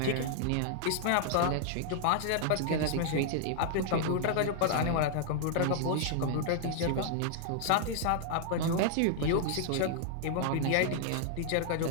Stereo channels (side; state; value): both; different; correlation -0.01